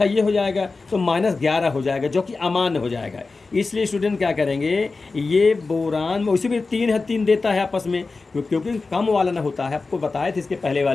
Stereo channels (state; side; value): quieter; right; 3.9 dB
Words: ये हो जाएगा, तो -11 हो जाएगा, जो कि अमान्य हो जाएगा। इसलिए स्टूडेंट क्या करेंगे, ये बोरान में उसी में 3 है, 3 देता है आपस में, क्योंकि कम वाला ना होता है। आपको बताया था इसके पहले